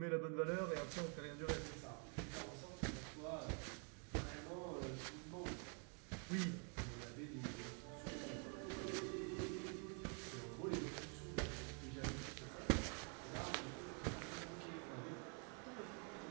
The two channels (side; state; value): left; quieter; 39.5 dB